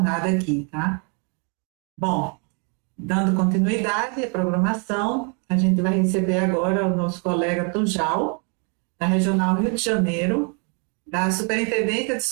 aqui, tá? Bom, dando continuidade à programação, a gente vai receber agora o nosso colega Tujal, da Regional Rio de Janeiro, da Superintendência de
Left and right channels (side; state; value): left; quieter; 37.6 dB